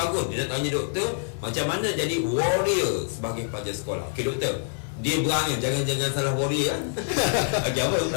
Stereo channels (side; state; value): right; silent; digital silence